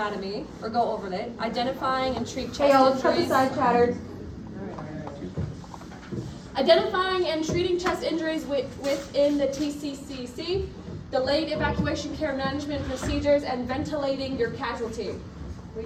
or go over it, identifying and treat chest injuries. Side chatters. Identifying and treating chest injuries within the TCCC, delayed evacuation care management procedures, and ventilating your casualty. We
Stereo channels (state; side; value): identical; both; correlation 1.00